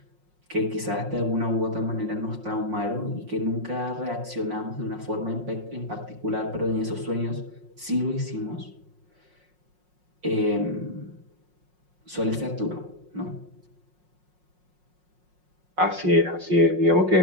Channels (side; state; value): left; late; 5.5 ms